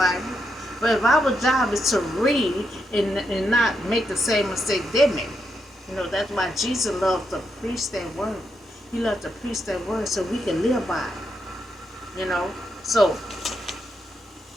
but if our job is to read and not make the same mistake they made, that's why Jesus loved to preach that word. He loved to preach that word so we can live by it. So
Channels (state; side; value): normal; both; correlation 0.82